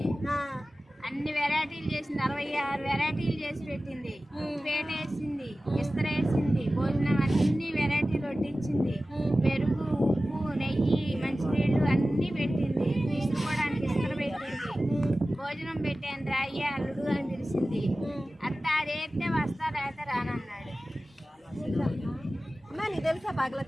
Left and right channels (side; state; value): both; normal; correlation 0.96